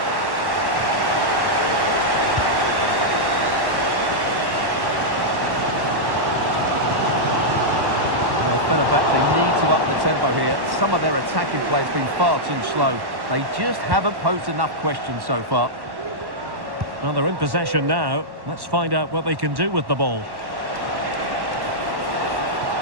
Well, Fenerbahce need to up the tempo here. Some of their attacking play has been far too slow. They just haven't posed enough questions so far. Well, they're in possession now. Let's find out what they can do with the ball.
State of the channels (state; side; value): late; left; 1.1 ms